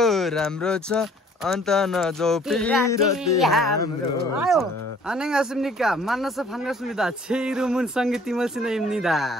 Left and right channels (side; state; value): both; normal; correlation 0.56